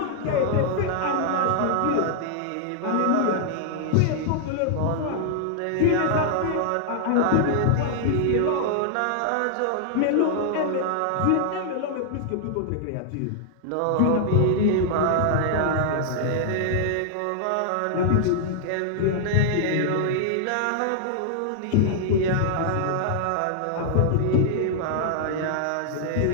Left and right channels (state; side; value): different; both; correlation -0.01